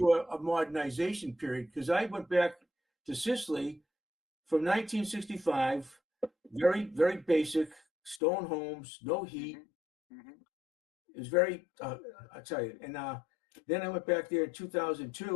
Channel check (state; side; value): drops out; right; at 8.2 s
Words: a modernization period, because I went back to Sicily from 1965, very, very basic stone homes, no heat. It was very, I'll tell you. And then I went back there in